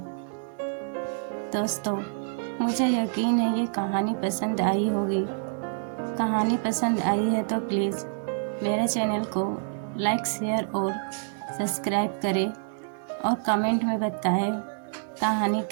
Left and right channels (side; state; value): left; silent; digital silence